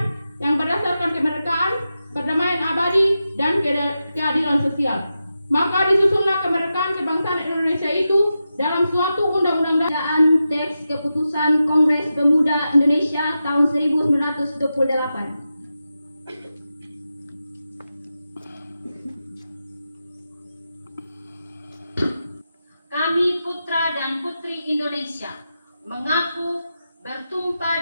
yang berdasarkan kemerdekaan, perdamaian abadi, dan keadilan sosial. Maka disusunlah kemerdekaan kebangsaan Indonesia itu dalam suatu undang-undang. Bacaan teks keputusan Kongres Pemuda Indonesia tahun 1928. Kami putra dan putri Indonesia mengaku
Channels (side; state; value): both; inverted; correlation -0.90